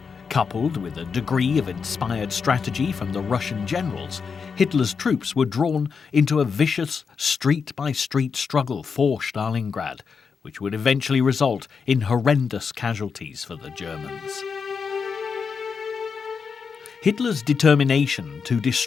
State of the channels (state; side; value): quieter; right; 5.7 dB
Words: coupled with a degree of inspired strategy from the Russian generals, Hitler's troops were drawn into a vicious street-by-street struggle for Stalingrad, which would eventually result in horrendous casualties for the Germans. Hitler's determination to